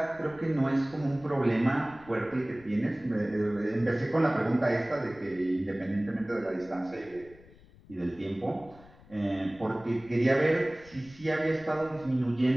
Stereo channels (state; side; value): noise; left; rumble, 23 dB below the sound